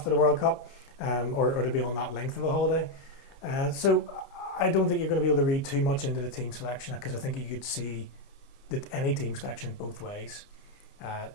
the World Cup, or to be on that length of a holiday. So I don't think you're going to be able to read too much into the team selection, because I think you could see that any team selection both ways.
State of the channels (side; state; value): right; late; 29 ms